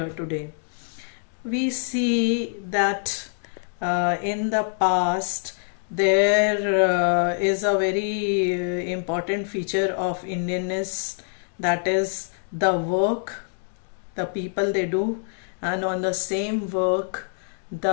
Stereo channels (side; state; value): right; silent; digital silence